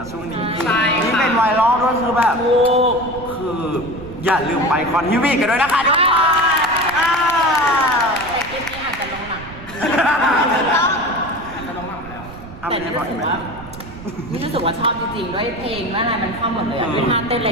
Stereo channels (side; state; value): right; noise; rumble, 16 dB below the sound